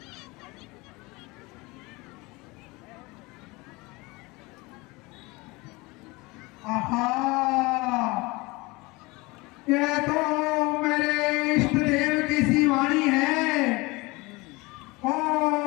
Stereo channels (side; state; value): right; quieter; 23.8 dB